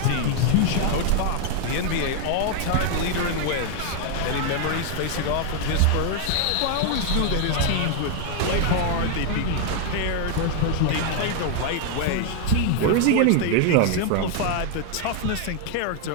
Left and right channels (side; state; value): both; different; correlation 0.00